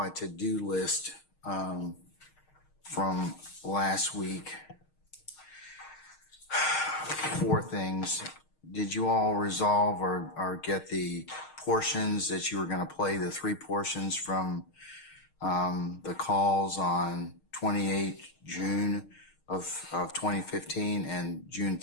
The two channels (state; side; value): late; right; 6.5 ms